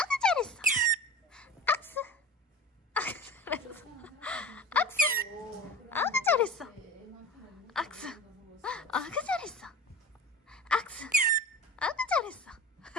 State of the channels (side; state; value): both; normal; correlation 0.34